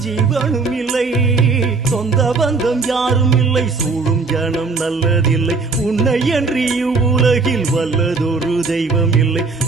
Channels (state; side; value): quieter; left; 4.2 dB